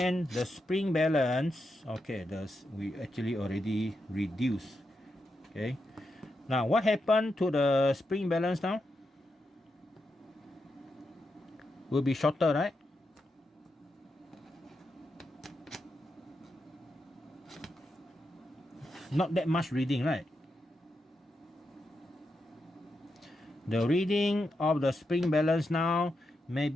the spring balance, okay, we actually already reduced. Okay, now what happened to the spring balance now? Will be shorter, right? Not that much reading, right? The reading of the spring balance now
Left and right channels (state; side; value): normal; both; correlation 0.85